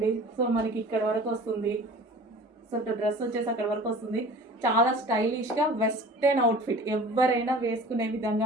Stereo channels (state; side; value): normal; both; correlation 0.43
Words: సో మనకి ఇక్కడ వరకు వస్తుంది. సో డ్రెస్ వచ్చేసి అక్కడ వరకు వస్తుంది. చాలా స్టైలిష్గా వెస్టర్న్ అవుట్ఫిట్ ఎవరైనా వేసుకునే విధంగా